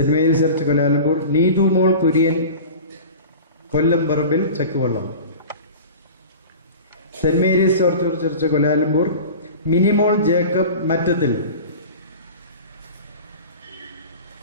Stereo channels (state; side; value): inverted; both; correlation -0.36